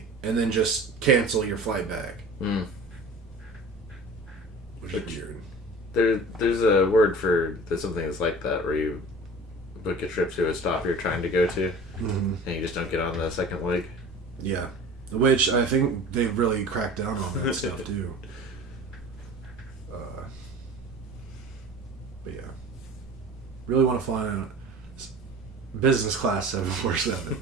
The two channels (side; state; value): both; normal; correlation 0.40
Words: and then just cancel your flight back. Which is weird. There's a word for something that's like that, where you book a trip to a stop you're trying to go to, and you just don't get on the second leg. Yeah. Which I think they've really cracked down on that stuff too. But yeah. Really want to fly on a business class